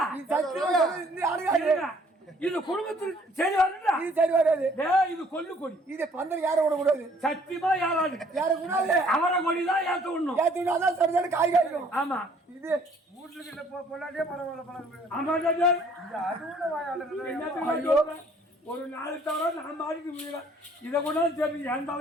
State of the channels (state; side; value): normal; both; correlation 0.60